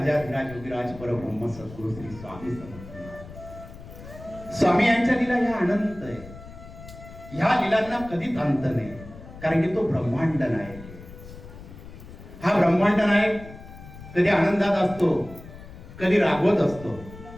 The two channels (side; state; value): left; noise; rumble, 16 dB below the sound